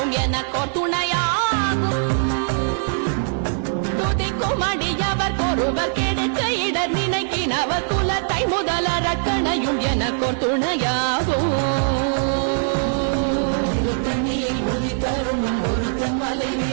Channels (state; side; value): silent; left; 55 dB below the other